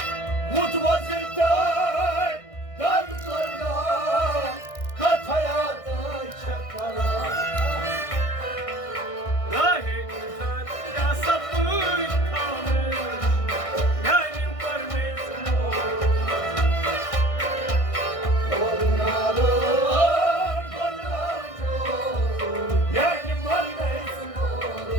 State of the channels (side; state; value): right; late; 1.6 ms